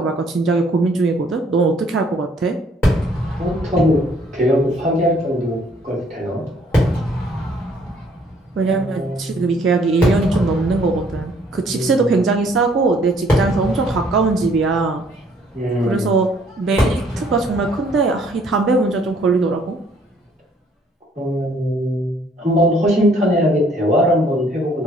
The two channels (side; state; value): both; normal; correlation 0.62